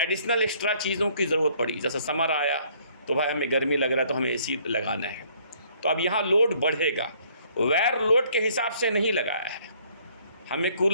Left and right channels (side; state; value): both; inverted; correlation -0.62